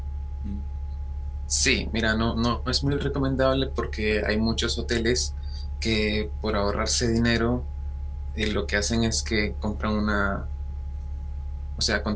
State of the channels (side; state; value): both; identical; correlation 1.00